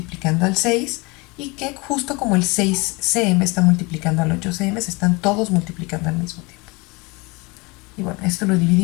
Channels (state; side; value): quieter; right; 26.5 dB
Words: al 6 y que justo como el 6 cm está multiplicando al 8 cm, se están todos multiplicando al mismo tiempo. Y bueno, esto lo